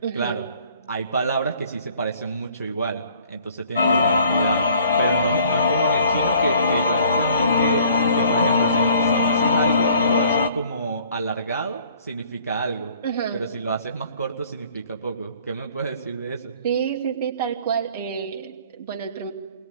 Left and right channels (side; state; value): both; inverted; correlation -0.56